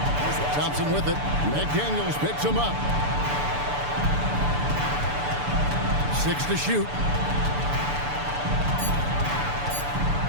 Thompson with it. McDaniels picks him up. 6 to shoot.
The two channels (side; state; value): left; late; 6.9 ms